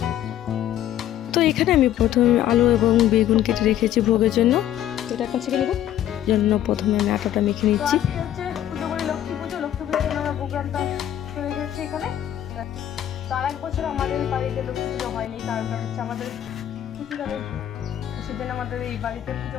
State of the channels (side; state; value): right; quieter; 11.7 dB